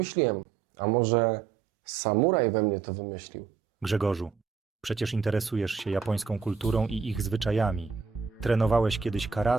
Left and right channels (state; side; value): quieter; left; 5.7 dB